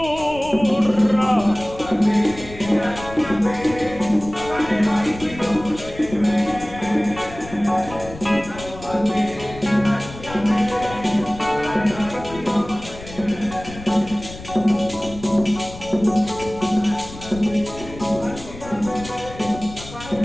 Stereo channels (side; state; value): left; noise; rumble, 15 dB below the sound